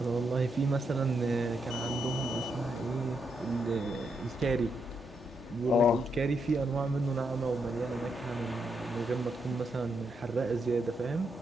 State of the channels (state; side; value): normal; both; correlation 0.80